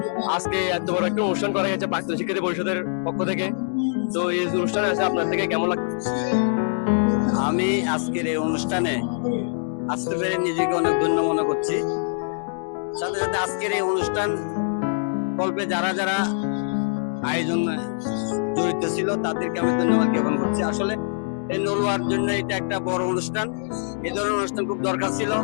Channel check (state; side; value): silent; right; digital silence